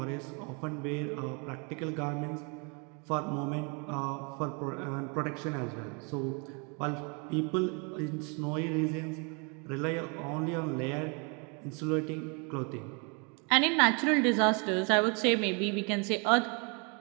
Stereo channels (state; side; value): quieter; left; 33.8 dB